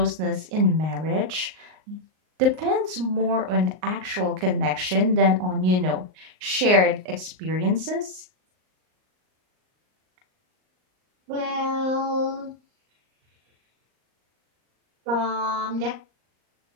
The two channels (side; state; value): left; late; 38 ms